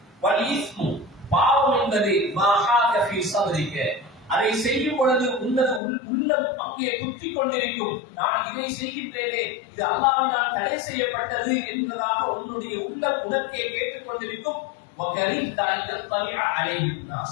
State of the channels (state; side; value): drops out; right; at 5.8 s